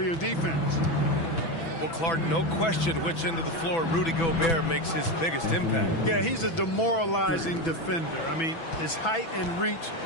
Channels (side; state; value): right; late; 6.0 ms